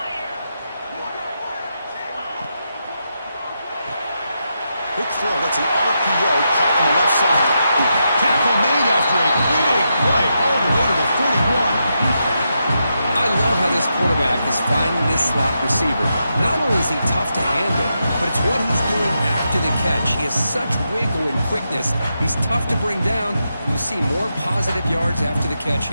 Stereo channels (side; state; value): both; inverted; correlation -0.85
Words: Quick throw. That's an RPO caught on the left side. Tackle made after a big play all the way to the 41. I love how this quarterback is finding this slot receiver. Not only is he tough to handle, but it's what he's doing after the catch. He has such wiggle and quickness. He's tough to bring down, and you see more positive yards after the catch